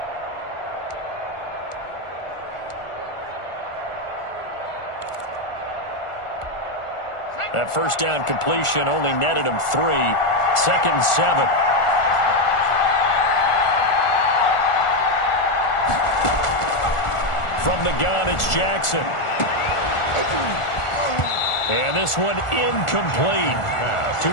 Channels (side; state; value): right; late; 1.4 ms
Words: That first down completion only netted him 3. 2nd and 7. From the gun, it's Jackson. And this one incomplete.